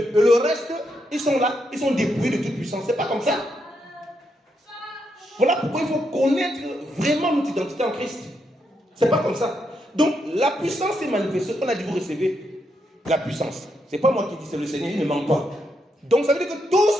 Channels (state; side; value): normal; both; correlation 0.80